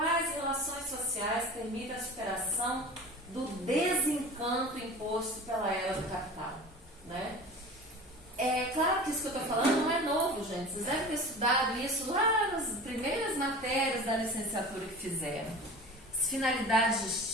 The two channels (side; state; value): both; normal; correlation 0.36